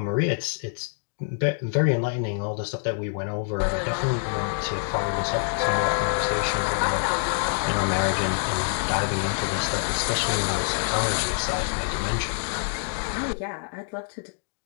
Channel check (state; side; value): silent; right; digital silence